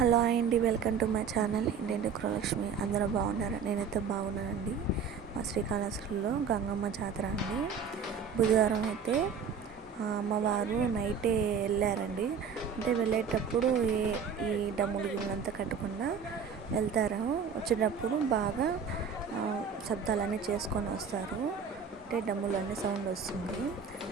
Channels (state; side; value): quieter; left; 6.3 dB